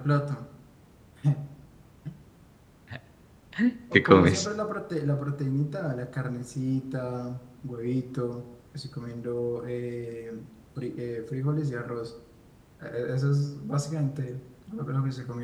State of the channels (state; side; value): identical; both; correlation 1.00